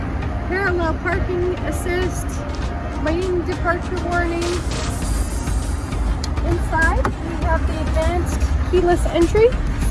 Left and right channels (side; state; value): both; identical; correlation 1.00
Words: parallel parking assist, lane departure warning. Inside, we have the advanced keyless entry,